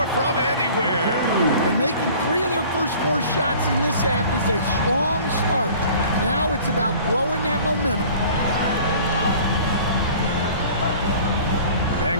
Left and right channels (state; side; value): inverted; both; correlation -0.47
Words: from anywhere. And making 3 of their first 4 shots in this half is a strong start. Now it's about growing that momentum.